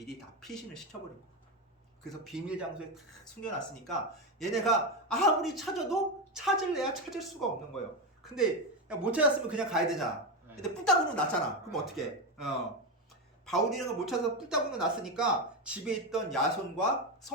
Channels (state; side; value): normal; both; correlation 0.13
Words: 다 피신을 시켜버린 거예요. 그래서 비밀 장소에 다 숨겨놨으니까 얘네가 아무리 찾아도 찾을래야 찾을 수가 없는 거예요. 근데 못 찾았으면 그냥 가야 되잖아. 근데 뿔따구로 났잖아. 그럼 어떻게? 바울 일행을 못 찾아서 뿔따구로 났으니까 집에 있던 야손과